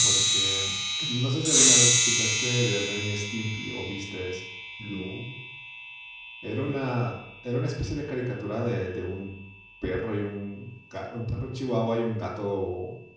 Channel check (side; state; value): both; identical; correlation 1.00